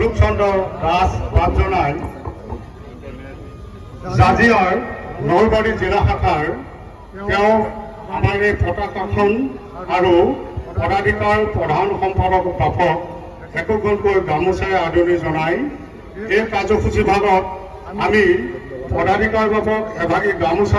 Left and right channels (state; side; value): identical; both; correlation 1.00